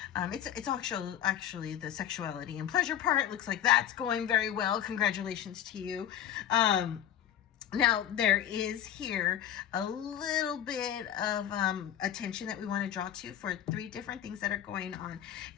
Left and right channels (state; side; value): quieter; right; 10.6 dB